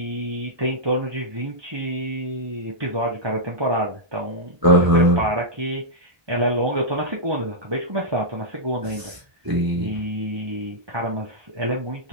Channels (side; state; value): left; late; 1.0 ms